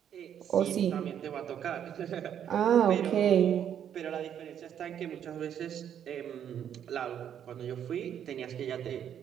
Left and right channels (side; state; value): left; quieter; 9.3 dB